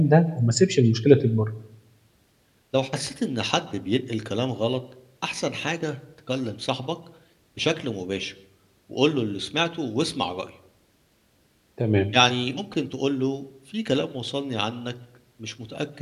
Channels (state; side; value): identical; both; correlation 1.00